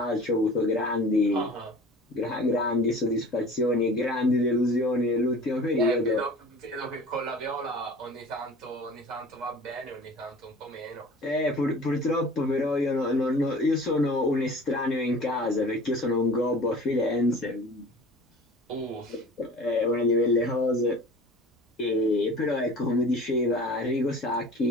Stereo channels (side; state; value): both; normal; correlation 0.41